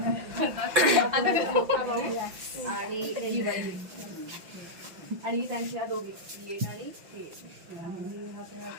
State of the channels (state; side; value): late; left; 5.8 ms